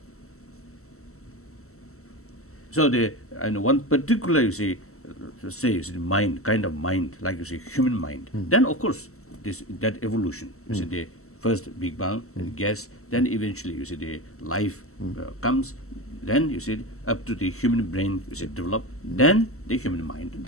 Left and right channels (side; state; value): right; late; 0.63 ms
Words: So the and one particular you see, say you see, mind, kind of mind, like you see, human mind. Then of course that evolution. You see the first Big Bang and gas. Then eventually you see the life comes. Then you see up to the human brain you see developed. Then the human mind